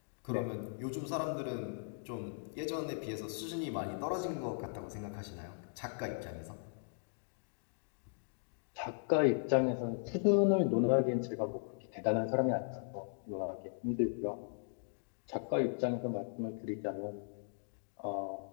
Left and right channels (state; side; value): silent; right; digital silence